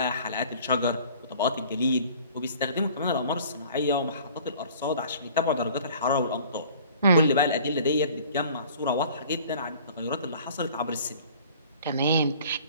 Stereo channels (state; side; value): inverted; both; correlation -0.49